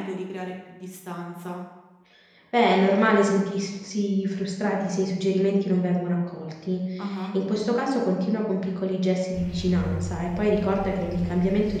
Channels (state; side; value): identical; both; correlation 1.00